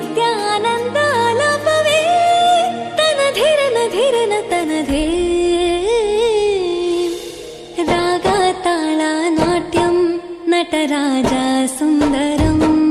ಆನಂದ ಆಲಾಪವೇ ತನಧಿರನ ಧಿರನ ತನಧೇ ರಾಗ ತಾಳ ನಾಟ್ಯಂ ನಟರಾಜ ಸುಂದರಂ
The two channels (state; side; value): identical; both; correlation 1.00